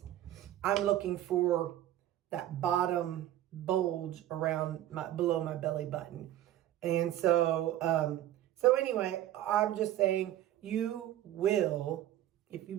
I'm looking for that bottom bulge around below my belly button. And so, so anyway, I'm just saying you will, if you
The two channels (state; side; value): quieter; left; 13.0 dB